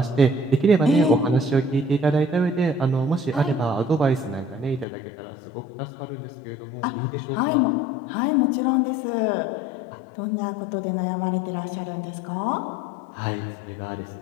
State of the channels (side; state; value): right; drops out; at 4.9 s